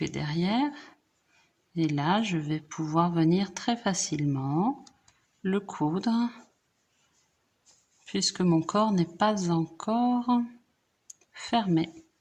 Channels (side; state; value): both; identical; correlation 1.00